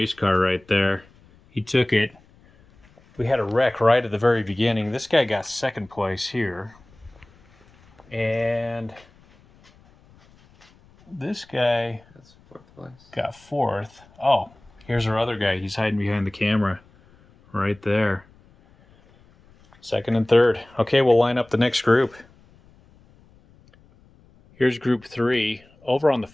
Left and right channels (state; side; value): noise; left; rumble, 29 dB below the sound